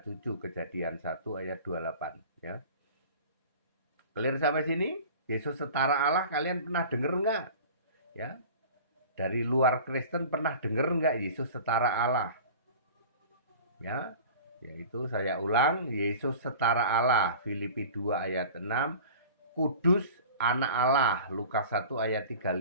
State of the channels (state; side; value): inverted; both; correlation -0.40